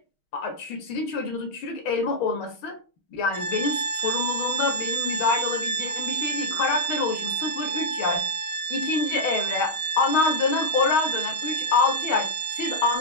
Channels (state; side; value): late; right; 6.3 ms